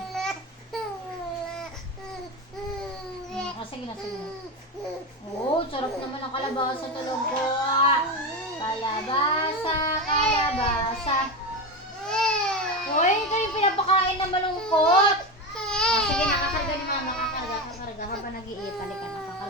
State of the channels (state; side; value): normal; both; correlation 0.18